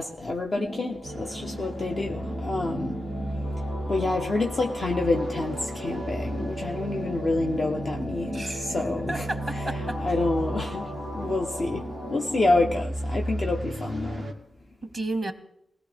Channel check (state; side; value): normal; both; correlation 0.90